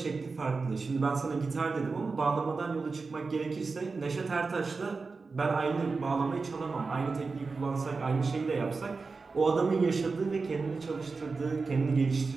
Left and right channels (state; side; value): quieter; left; 4.3 dB